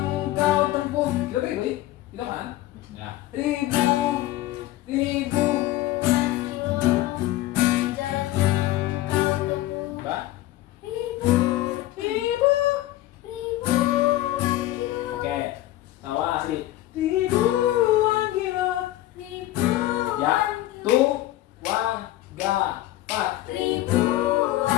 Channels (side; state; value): right; quieter; 15.6 dB